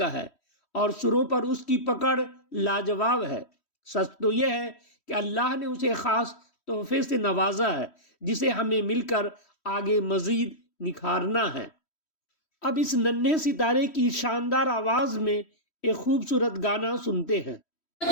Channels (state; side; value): late; right; 3.1 ms